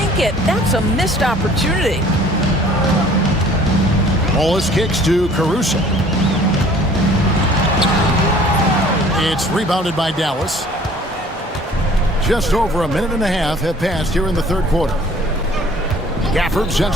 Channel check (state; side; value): normal; both; correlation 0.52